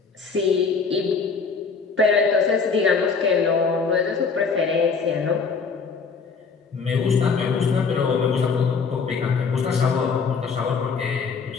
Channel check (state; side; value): quieter; right; 5.2 dB